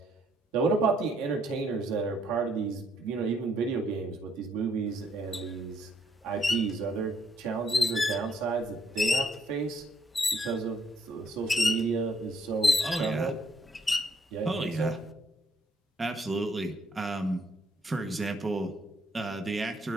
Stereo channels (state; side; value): normal; both; correlation 0.70